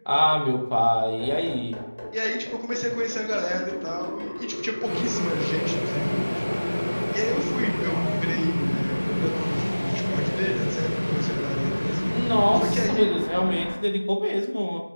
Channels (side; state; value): both; inverted; correlation -1.00